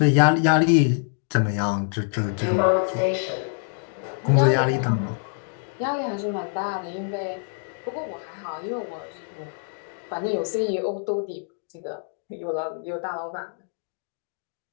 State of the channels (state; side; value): silent; right; 61 dB below the other